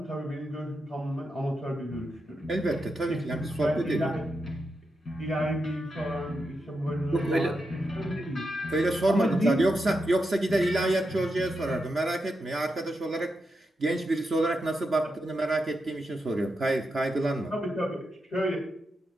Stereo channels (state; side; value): normal; both; correlation 0.86